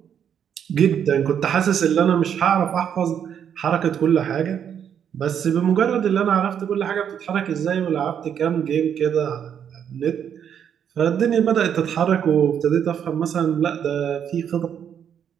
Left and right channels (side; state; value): left; quieter; 8.5 dB